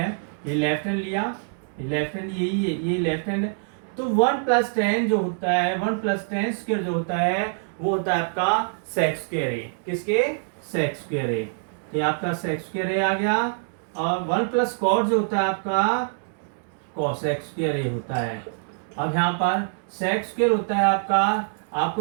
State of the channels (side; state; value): left; silent; digital silence